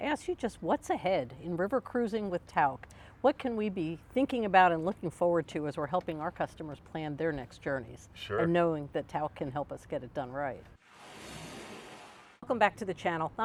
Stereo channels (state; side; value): identical; both; correlation 1.00